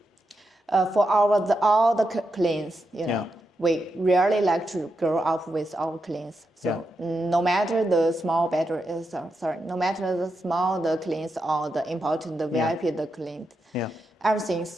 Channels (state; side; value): normal; both; correlation 0.86